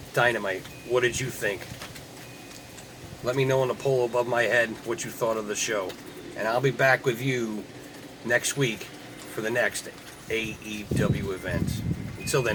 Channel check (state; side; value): identical; both; correlation 1.00